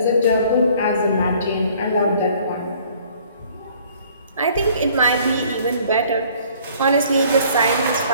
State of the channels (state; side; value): inverted; both; correlation -0.56